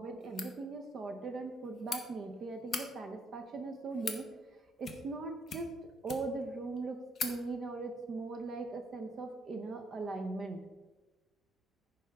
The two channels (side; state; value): both; normal; correlation 0.72